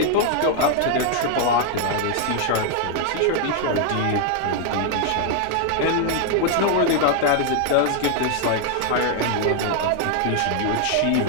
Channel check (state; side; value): different; both; correlation 0.00